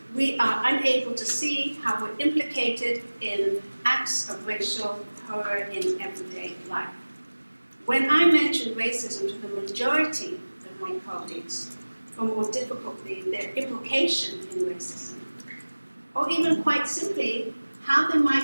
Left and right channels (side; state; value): both; inverted; correlation -1.00